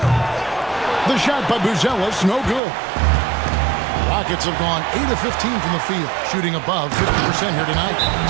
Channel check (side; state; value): left; drops out; at 2.6 s